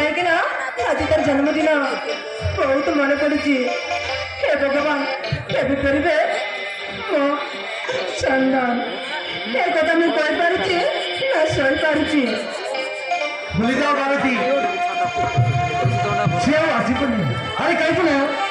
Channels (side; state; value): both; identical; correlation 1.00